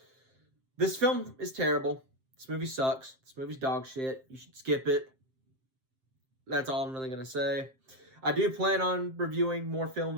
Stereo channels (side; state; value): left; late; 7.7 ms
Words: This film is terrible. This movie sucks. This movie's dog shit. You should skip it. That's all I'm really going to say. I do plan on reviewing more